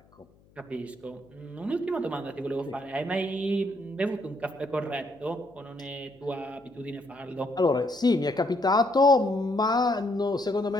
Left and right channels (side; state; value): left; noise; hum, 30 dB below the sound